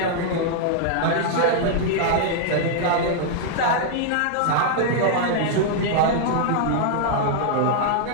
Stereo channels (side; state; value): both; different; correlation -0.01